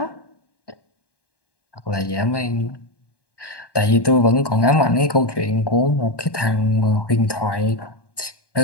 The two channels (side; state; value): right; late; 1.1 ms